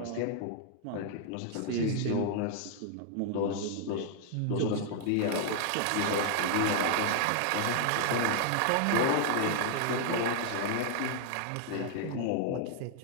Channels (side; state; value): both; different; correlation 0.00